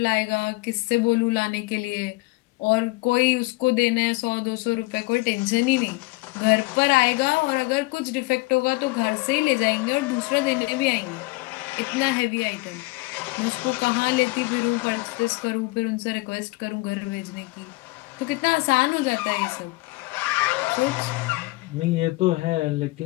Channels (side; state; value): right; quieter; 23.1 dB